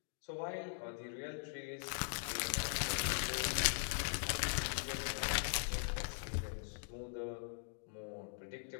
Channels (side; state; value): right; silent; digital silence